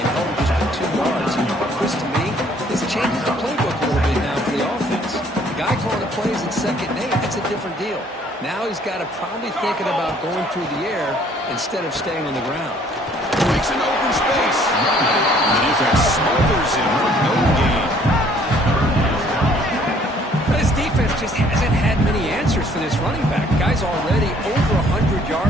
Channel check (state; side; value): normal; both; correlation 0.60